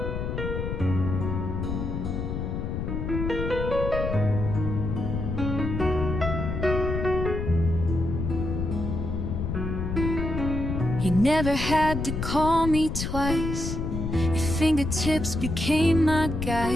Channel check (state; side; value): noise; left; rumble, 3 dB below the sound